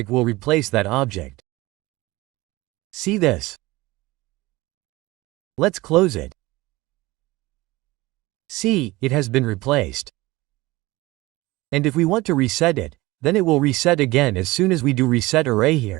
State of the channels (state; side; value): quieter; left; 20.3 dB